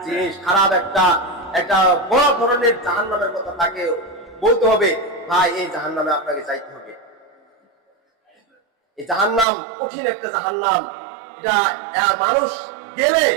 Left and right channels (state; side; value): drops out; left; at 9.5 s